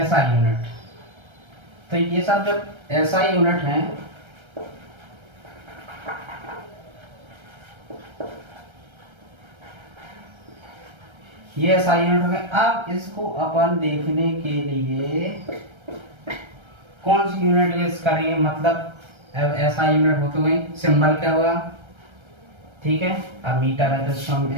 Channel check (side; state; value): left; late; 1.3 ms